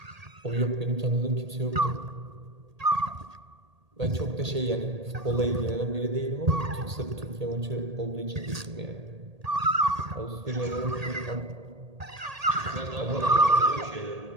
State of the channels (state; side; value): late; left; 1.8 ms